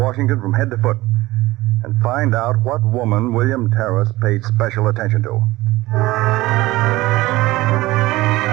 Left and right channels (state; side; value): quieter; left; 18.7 dB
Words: from head to foot, and find out what woman William Terrace paid special attention to.